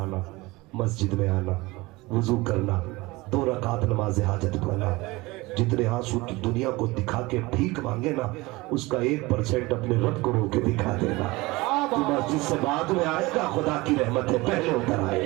مسجد میں آنا, وضو کرنا, 2 رکعت نماز حاجت پڑھنا. جتنے آنسو کی دنیا کو دکھا کے بھیک مانگے نا اس کا 1% اپنے رب کو رو کے دکھا دینا. تو مسجد سے بعد میں آئے گا, خدا کی رحمت ہے پہلے اتر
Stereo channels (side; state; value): left; quieter; 21.9 dB